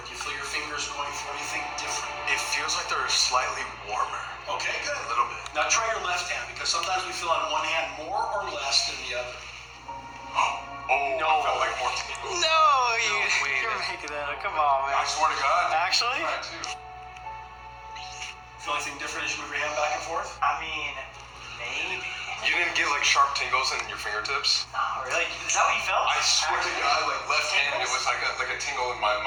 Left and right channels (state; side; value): identical; both; correlation 1.00